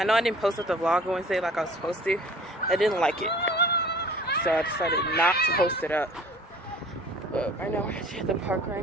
know I didn't post up the vlog Wednesday like I was supposed to. I didn't like it. So I decided not to post it up. But right now we're actually at the park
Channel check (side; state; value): both; normal; correlation 0.48